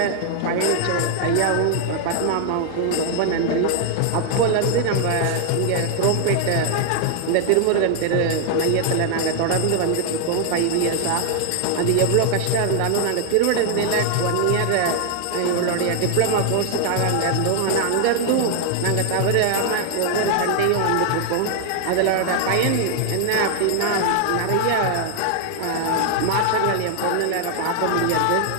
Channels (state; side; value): different; both; correlation 0.00